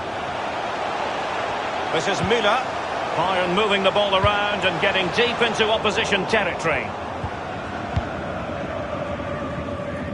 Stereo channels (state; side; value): identical; both; correlation 1.00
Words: This is Müller. Bayern moving the ball around and getting deep into opposition territory.